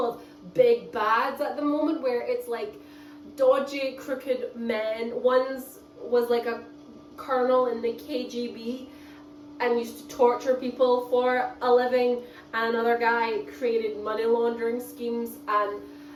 of big bads at the moment where it's like dodgy, crooked men. One's was like a colonel in the KGB and used to torture people for a living, and another guy created money laundering schemes, and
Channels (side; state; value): both; identical; correlation 1.00